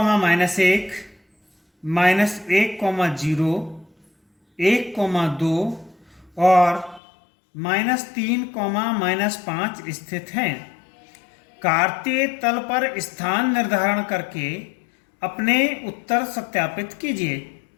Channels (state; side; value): drops out; right; at 7.0 s